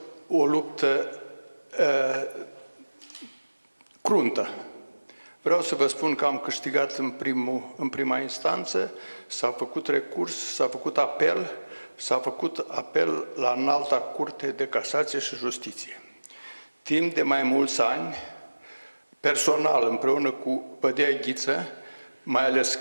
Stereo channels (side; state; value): both; inverted; correlation -1.00